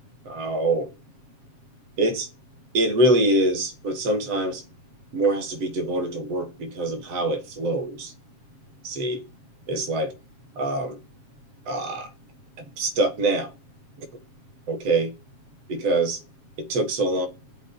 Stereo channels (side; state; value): left; late; 7.4 ms